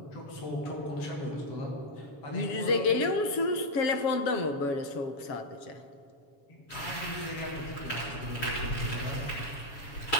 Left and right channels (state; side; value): late; right; 7.2 ms